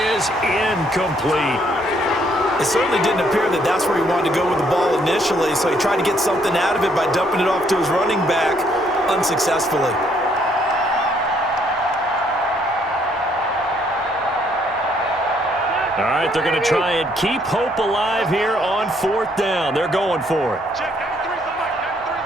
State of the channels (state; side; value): normal; both; correlation 0.68